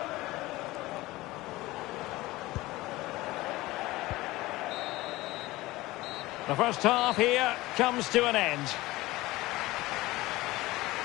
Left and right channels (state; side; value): quieter; right; 19.1 dB